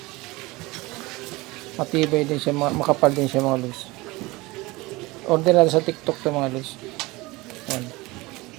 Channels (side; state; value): left; quieter; 22.1 dB